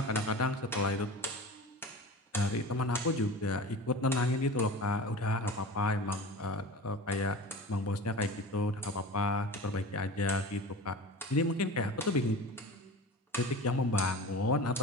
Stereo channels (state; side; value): normal; both; correlation 0.33